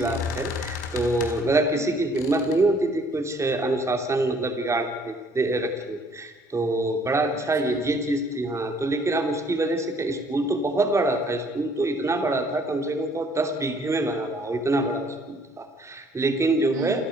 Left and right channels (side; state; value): both; normal; correlation 0.60